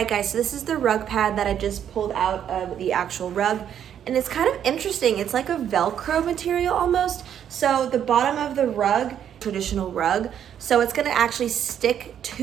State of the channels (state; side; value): quieter; left; 9.4 dB